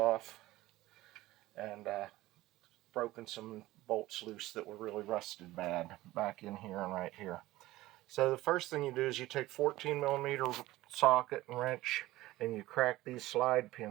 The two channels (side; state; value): left; quieter; 17.3 dB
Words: and broken some bolts loose that were really rusted bad back in here and right here. So the first thing you do is you take 14mm socket and wrench and you crack these slide